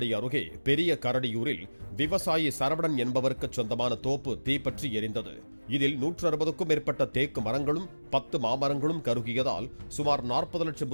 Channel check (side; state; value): both; inverted; correlation -1.00